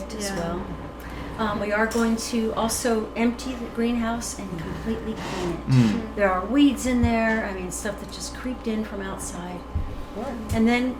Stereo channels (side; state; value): both; identical; correlation 1.00